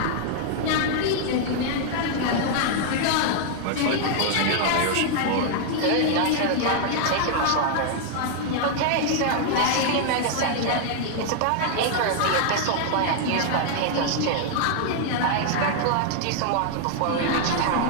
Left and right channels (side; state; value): both; different; correlation 0.00